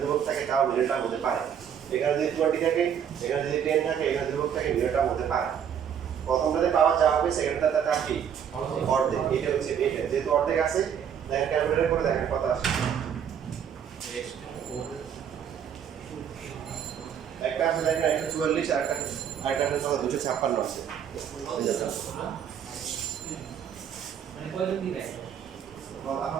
থাকে, তাও নির্ণয়টা হতে পারে। এখানে যদি 20 থাকে, এখানে যদি 10 থাকে, এখানে ধ্রুবক থাকে, নির্ণয়টা হতে পারে। প্রথমটাতে পাওয়ার যা হবে, সেকেন্ডটাতে তার কি অর্ধেক। এটা হচ্ছে এটা, যেহেতু অর্ধেক আছে দেখেন ক্যালকুলেটর করে দেখেন কত আসে। একটা আছে দেখেন 144, আরেকটা আছে 256 আছে।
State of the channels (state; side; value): quieter; left; 8.4 dB